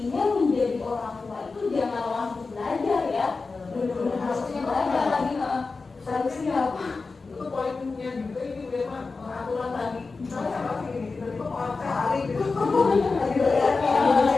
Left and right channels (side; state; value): right; quieter; 4.1 dB